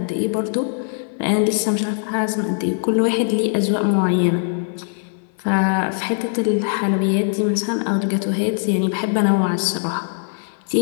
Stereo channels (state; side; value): silent; right; 56 dB below the other